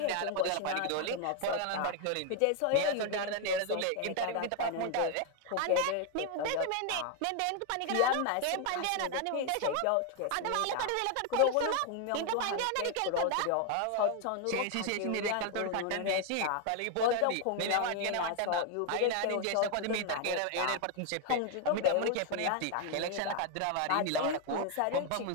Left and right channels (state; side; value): different; both; correlation 0.01